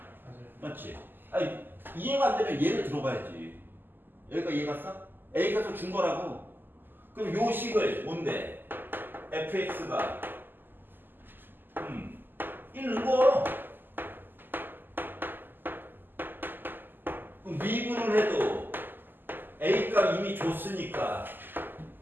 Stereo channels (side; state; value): left; late; 0.092 ms